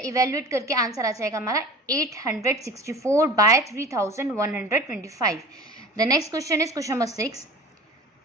इवेल्युएट करके आंसर आ जाएगा हमारा 864/3125। The next question is question number 6।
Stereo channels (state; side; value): normal; both; correlation 0.39